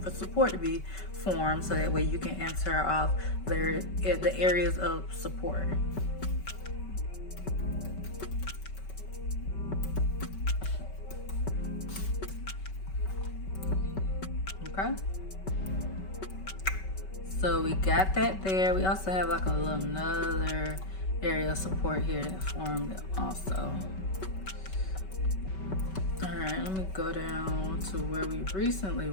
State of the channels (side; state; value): right; late; 5.3 ms